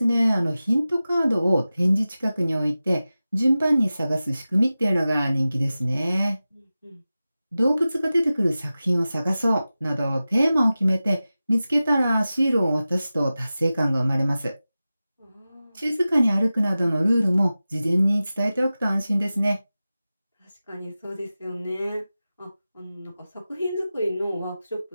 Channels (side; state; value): both; inverted; correlation -0.95